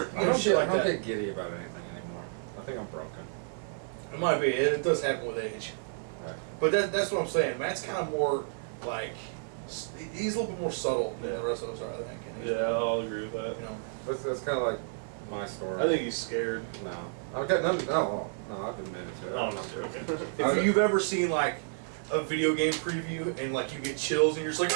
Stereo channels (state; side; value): silent; left; 56 dB below the other